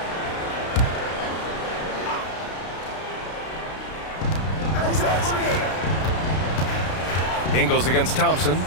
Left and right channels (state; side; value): late; right; 32 ms